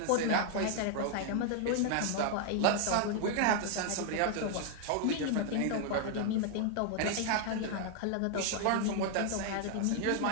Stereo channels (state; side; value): different; both; correlation 0.00